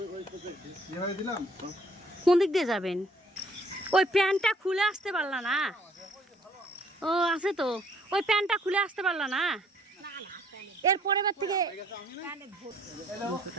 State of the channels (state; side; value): normal; both; correlation 0.61